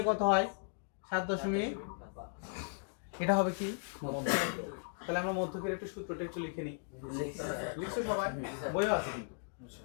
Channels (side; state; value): right; silent; digital silence